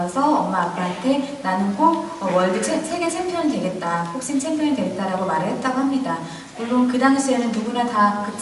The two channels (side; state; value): both; identical; correlation 1.00